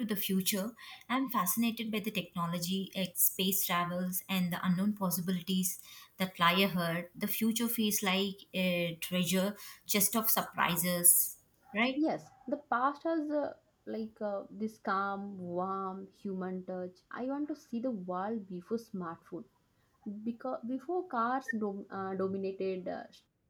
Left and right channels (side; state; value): both; identical; correlation 1.00